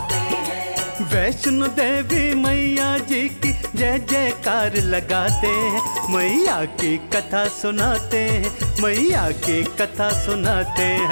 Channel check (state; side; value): inverted; both; correlation -1.00